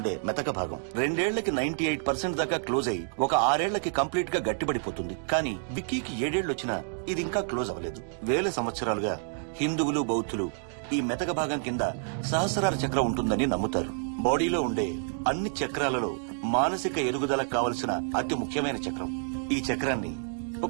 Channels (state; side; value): silent; left; digital silence